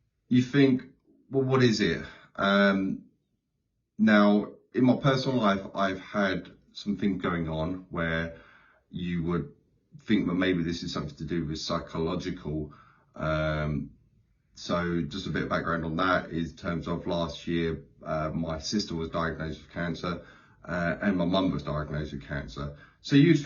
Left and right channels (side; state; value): both; identical; correlation 1.00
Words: you think, well, what is it? Now, in my personal life, I've had some things going on where you would think that maybe this is something to do with psychological. So just a bit of background on that is in terms of last year, my sister was diagnosed with cancer, and my mum was diagnosed with cancer. So